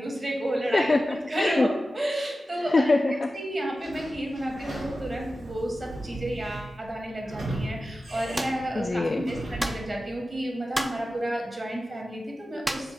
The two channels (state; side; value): normal; both; correlation 0.94